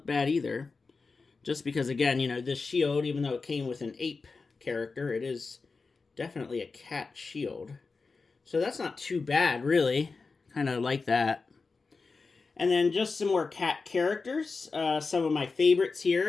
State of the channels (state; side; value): quieter; right; 4.3 dB